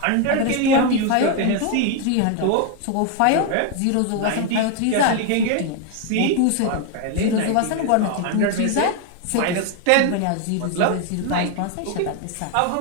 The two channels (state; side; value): different; both; correlation 0.01